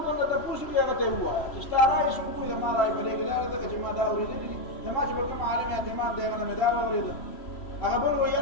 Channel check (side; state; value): right; late; 3.0 ms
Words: درته تپوس وکړي هغه ته یې ووایه چې ستا رایې څوک وکړي زما رایې په دې کې دا ده چې ما دا اورېدلي دي زما چې په کوم عالم اعتماد دی هغه نه مې دا واورېده هغه بل وایي